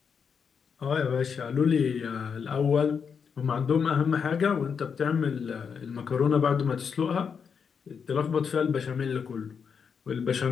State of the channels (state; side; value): quieter; right; 6.4 dB